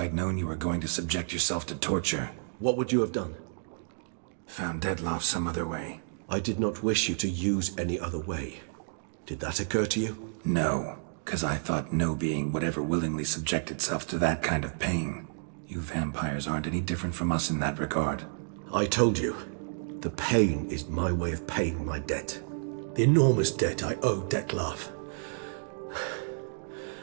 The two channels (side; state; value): left; silent; digital silence